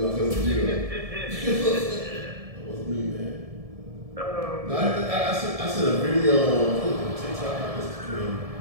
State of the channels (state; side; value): late; left; 1.7 ms